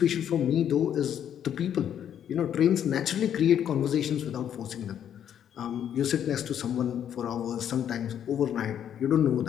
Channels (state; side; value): quieter; right; 9.5 dB